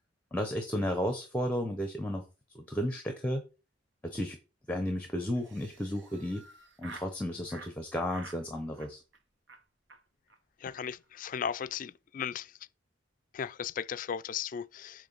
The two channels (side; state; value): both; normal; correlation 0.63